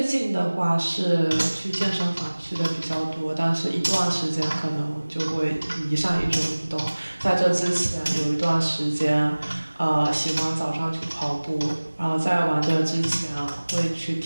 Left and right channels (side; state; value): both; inverted; correlation -1.00